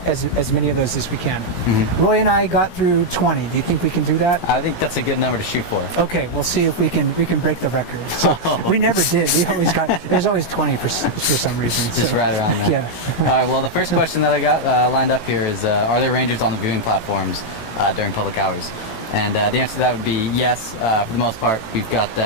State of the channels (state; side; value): late; right; 17 ms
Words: as many of those as we can. Roy and I got through 20. Do you think we can do that? I think that's a good number to shoot for. Okay, we'll see if we can break the record. So we never did. We always got, there's always 20 for some reason. Just so, right around there. Yeah. All right, well, the first question that I got lined up here is, are there rangers on the viewing platforms during public hours? And the answer to that would be yes. For the most part, we've got